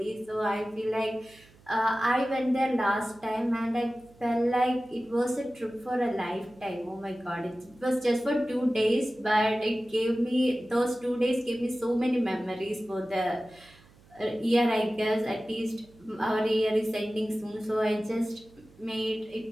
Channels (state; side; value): noise; right; hum, 27 dB below the sound